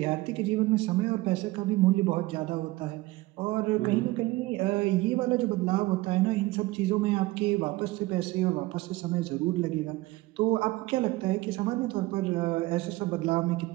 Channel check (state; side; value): quieter; left; 19.6 dB